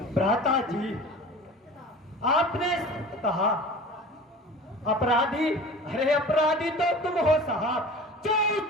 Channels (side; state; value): both; normal; correlation 0.39